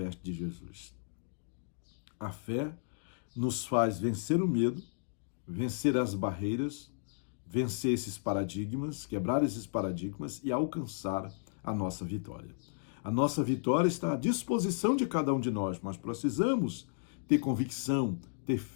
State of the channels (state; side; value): silent; right; digital silence